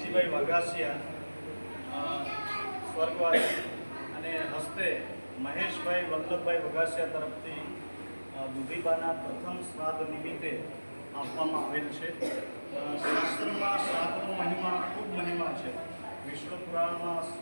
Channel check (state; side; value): inverted; both; correlation -1.00